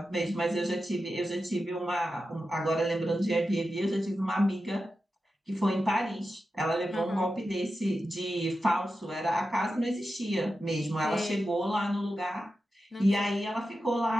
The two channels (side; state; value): both; normal; correlation 0.91